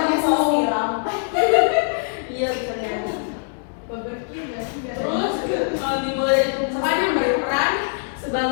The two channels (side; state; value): right; silent; digital silence